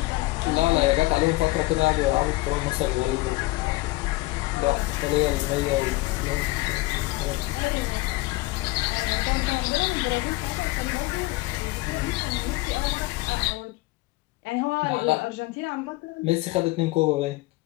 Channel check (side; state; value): right; quieter; 20.7 dB